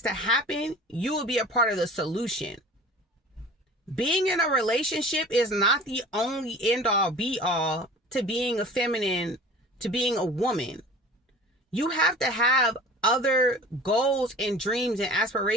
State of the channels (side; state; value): both; normal; correlation 0.41